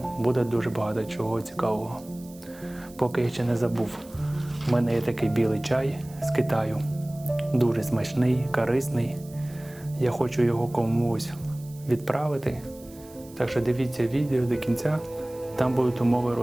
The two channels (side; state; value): right; noise; hiss, 23 dB below the sound